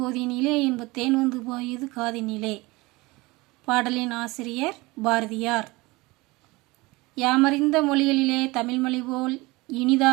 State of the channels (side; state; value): left; quieter; 22.5 dB